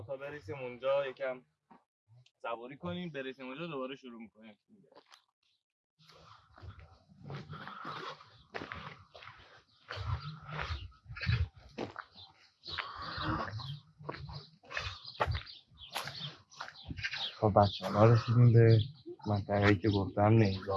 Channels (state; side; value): identical; both; correlation 1.00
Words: تا برسیم اونجا یکم صبوری کنیم، برسیم اونجا دوباره شروع میکنیم. خب بچه ها رسیدیم به منطقه‌ای که گفتم